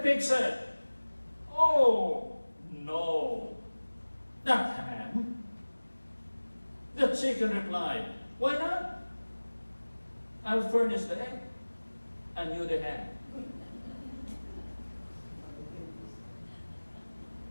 said, oh, no, not ham. The chicken replied, why not? I'll furnish the egg and you the ham.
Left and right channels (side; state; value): both; inverted; correlation -1.00